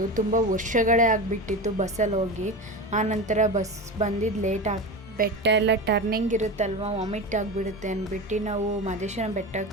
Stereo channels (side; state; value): both; normal; correlation 0.25